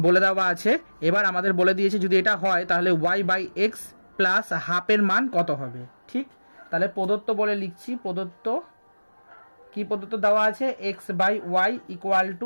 বলে দেওয়া আছে। এবার আমাদের বলে দিয়েছে যদি এটা হয় তাহলে y/x প্লাস হাফের মান কত হবে। ঠিক, তাহলে প্রদত্ত বলে লিখছি। প্রদত্ত দেওয়া আছে x/y ইকুয়াল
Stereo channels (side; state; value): both; inverted; correlation -1.00